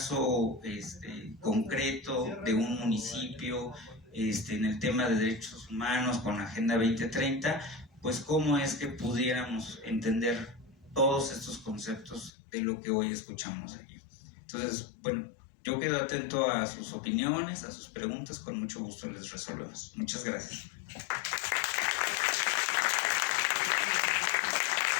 concreto de un municipio en el tema de derechos humanos con la Agenda 2030, pues cómo es que pudiéramos entender todos estos conceptos de lo que hoy escuchamos aquí. Entonces, bueno, yo quedo atento a sus opiniones, a sus preguntas, con mucho gusto les resolvemos. Muchas gracias.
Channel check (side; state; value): right; drops out; at 12.3 s